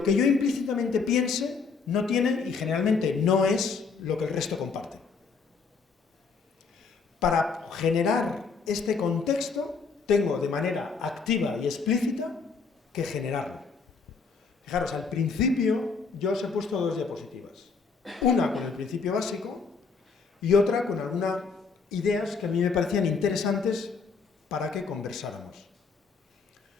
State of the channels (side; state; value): right; quieter; 5.0 dB